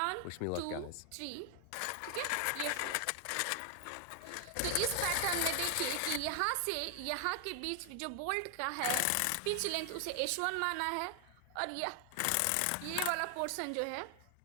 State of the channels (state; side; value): different; both; correlation 0.00